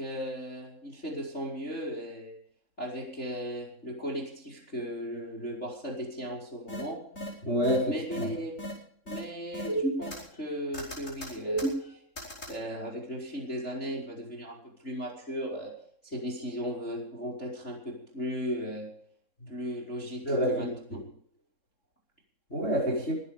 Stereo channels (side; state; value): right; late; 3.7 ms